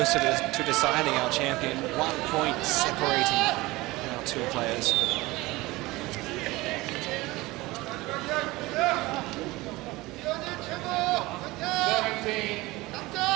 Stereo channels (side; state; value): left; quieter; 20.6 dB